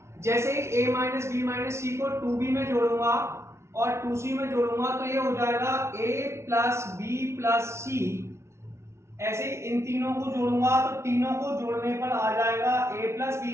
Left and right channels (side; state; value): left; late; 0.13 ms